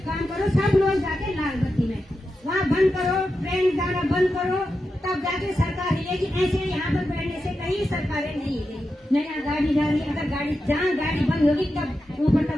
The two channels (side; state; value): both; normal; correlation 0.89